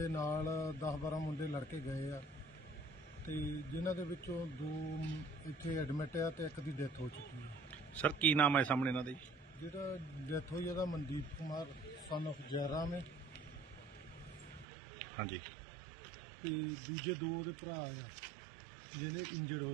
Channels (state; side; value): drops out; left; at 14.7 s